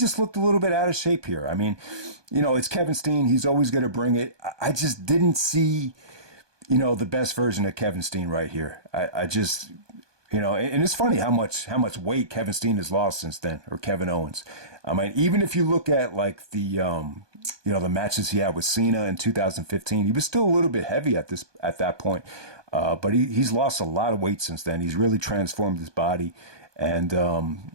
looked a little bit out of shape here. I mean, it's Kevin Steen. He's always going to bring it. I just didn't see, the best version of Kevin Steen right here. I just... and it's funny how much weight Kevin Steen has lost since then, or Kevin Owens. I mean, even if you look at like the matches he had with Cena in 2015, he was still a little bit heavy at that point. But he's lost a lot of weight since then. He's really transformed his body, and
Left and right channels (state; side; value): late; left; 1.2 ms